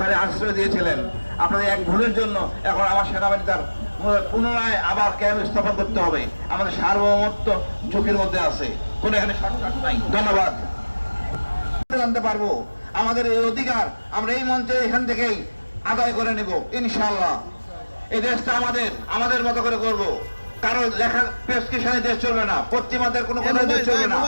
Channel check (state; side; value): inverted; both; correlation -1.00